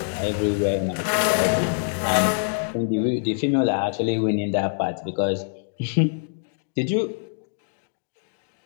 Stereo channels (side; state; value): right; silent; digital silence